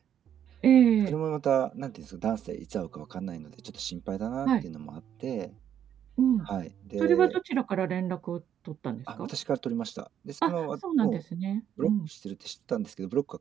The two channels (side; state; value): left; quieter; 9.6 dB